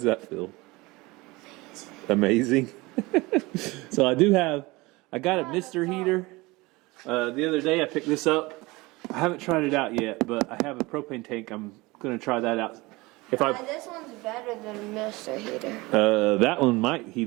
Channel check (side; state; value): left; quieter; 22.5 dB